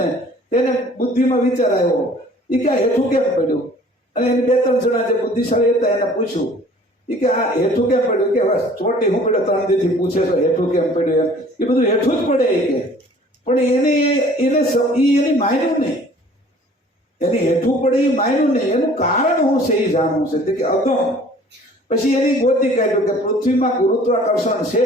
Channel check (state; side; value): normal; both; correlation 0.51